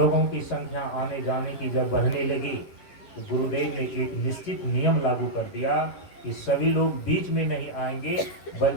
की संख्या आने जाने की जब बढ़ने लगी, तो गुरुदेव ने एक निश्चित नियम लागू कर दिया कि सभी लोग बीच में नहीं आएंगे,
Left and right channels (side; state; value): right; late; 10 ms